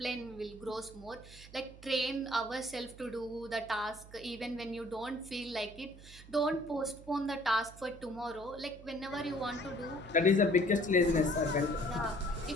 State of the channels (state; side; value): noise; right; hum, 18 dB below the sound